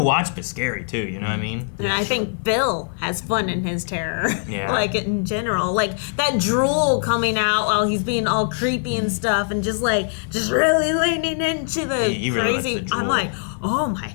watch, but scary too, you know what I mean? And I think Bill has fun in his terror. Yeah. Like in general. Like that drool coming out while he's being all creepy and stuff and just really leaning into the he really crazy. likes the I'm drool. like, oh my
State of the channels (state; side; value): silent; right; digital silence